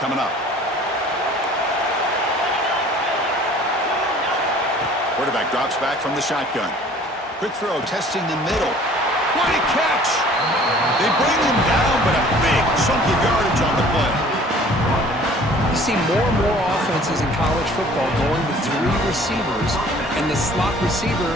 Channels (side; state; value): both; normal; correlation 0.51